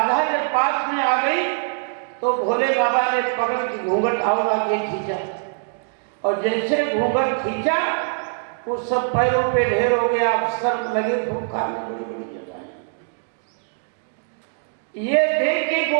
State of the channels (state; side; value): silent; left; digital silence